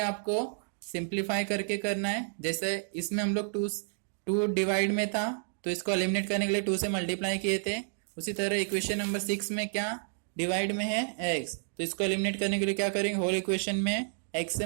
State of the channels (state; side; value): silent; left; digital silence